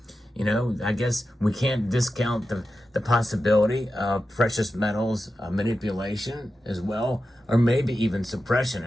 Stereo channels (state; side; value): normal; both; correlation 0.91